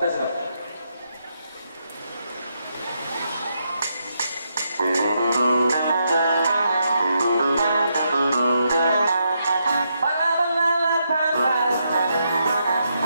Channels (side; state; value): both; inverted; correlation -0.80